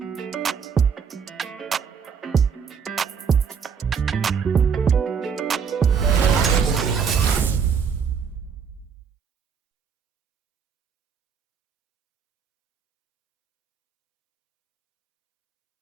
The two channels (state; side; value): quieter; left; 6.5 dB